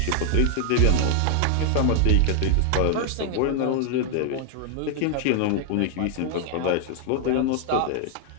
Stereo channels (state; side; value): different; both; correlation 0.00